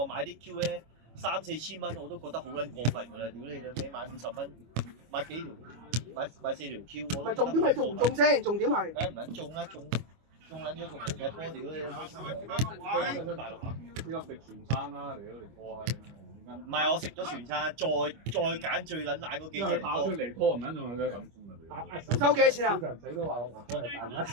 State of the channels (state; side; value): late; left; 25 ms